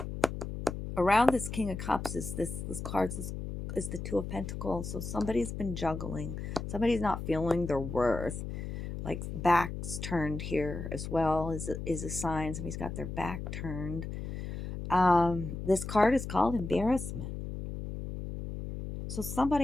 around this King of Cups is this card is the Two of Pentacles. So somebody's been juggling. Somebody's not feeling their worth. Like backs turned here as well is a sign. Somebody's got their back turned. This card is called embarrassment. So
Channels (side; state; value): left; noise; hum, 6 dB below the sound